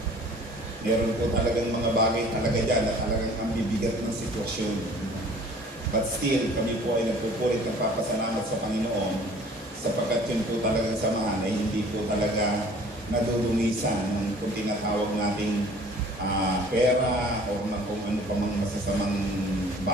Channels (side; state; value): both; normal; correlation 0.50